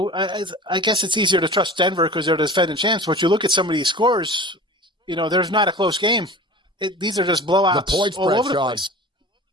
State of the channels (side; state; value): both; normal; correlation 0.37